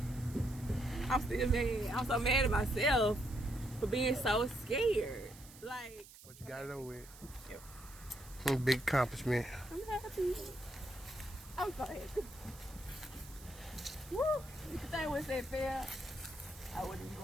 I'm still mad. I'm so mad at myself for being so scared. Like, But you got it over with. Yep. Big accomplishment. I'm happy. I'm so happy. Woo! You could think once that failed, I wouldn't be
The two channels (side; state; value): right; noise; hiss, 19 dB below the sound